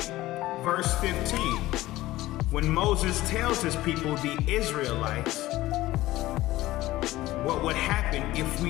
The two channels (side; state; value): right; quieter; 16.9 dB